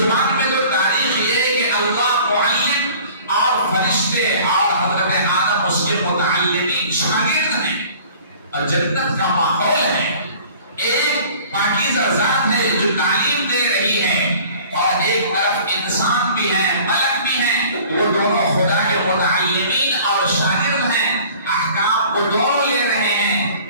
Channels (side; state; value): both; inverted; correlation -0.48